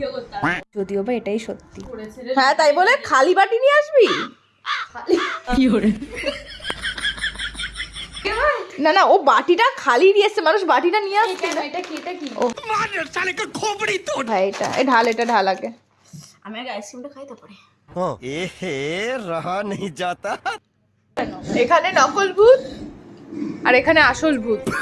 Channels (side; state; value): both; identical; correlation 1.00